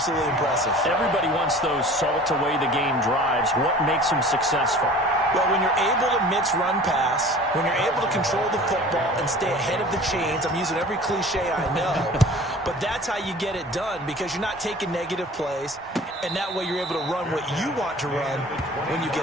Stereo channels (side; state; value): both; normal; correlation 0.44